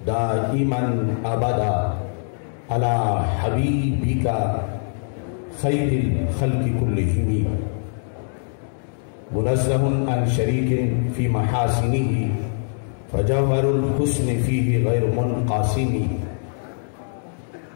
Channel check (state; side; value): silent; right; digital silence